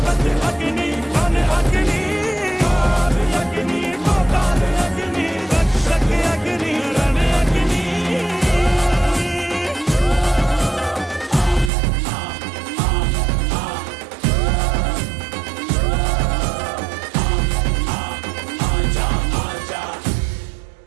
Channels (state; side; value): drops out; left; at 11.7 s